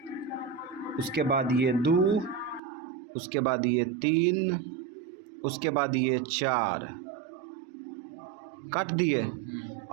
उसके बाद ये 2, उसके बाद ये 3, उसके बाद ये 4 काट दिए।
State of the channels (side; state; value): left; drops out; at 2.6 s